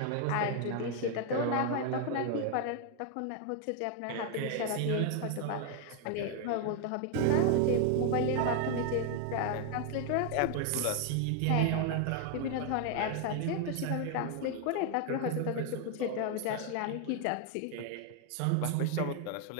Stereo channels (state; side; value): different; both; correlation 0.00